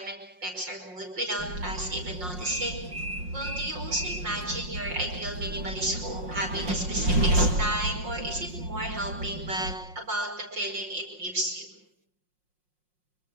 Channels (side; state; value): left; late; 5.6 ms